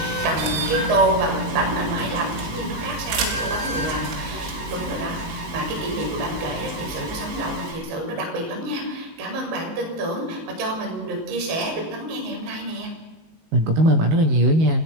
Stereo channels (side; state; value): left; late; 19 ms